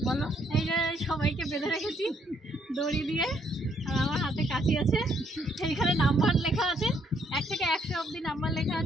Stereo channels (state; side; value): normal; both; correlation 0.70